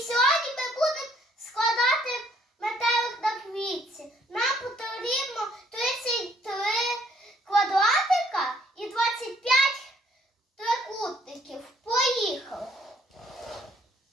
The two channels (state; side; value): normal; both; correlation 0.64